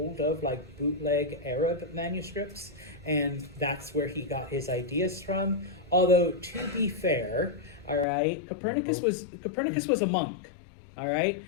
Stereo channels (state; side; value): drops out; right; at 8.1 s